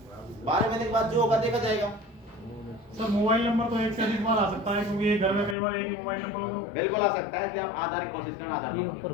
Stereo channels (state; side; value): drops out; right; at 5.6 s